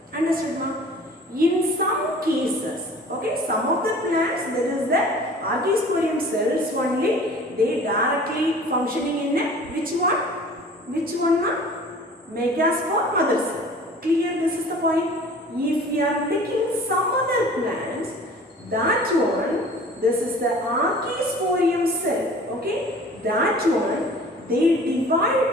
Understood, ma? In some cases, okay, some of the plants there is the archisporium cells only. They directly functioning in a which one? Which one, ma? Megaspore mother cell. Clear? This is the point. If we are taking some other plants, that one, this is the archisporium cell. Okay, that one they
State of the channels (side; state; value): both; normal; correlation 0.45